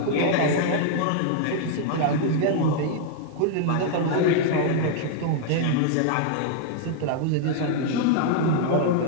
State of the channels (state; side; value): different; both; correlation 0.00